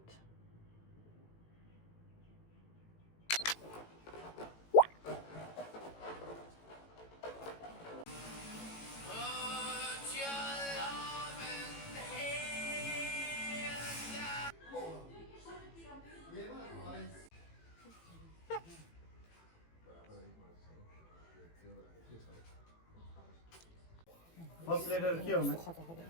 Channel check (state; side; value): late; right; 18 ms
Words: First letter क्या होना?